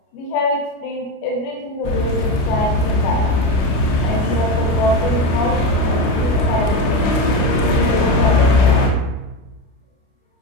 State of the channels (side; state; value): right; late; 29 ms